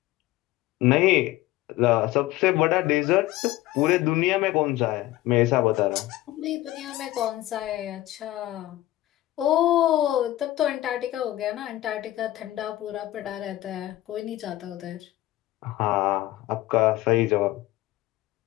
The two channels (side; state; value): right; quieter; 16.0 dB